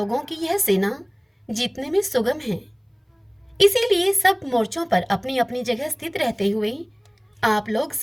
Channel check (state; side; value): identical; both; correlation 1.00